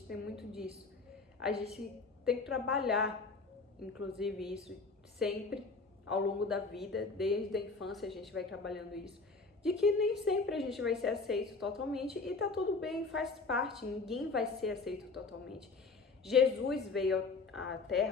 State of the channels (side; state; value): right; quieter; 4.1 dB